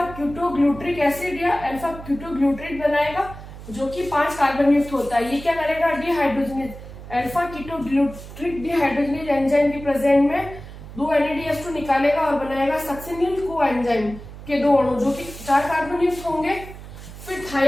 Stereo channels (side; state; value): right; noise; hum, 14 dB below the sound